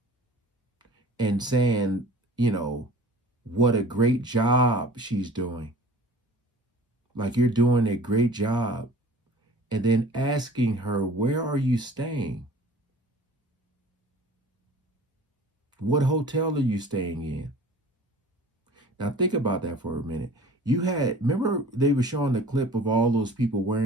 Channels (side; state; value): both; normal; correlation 0.44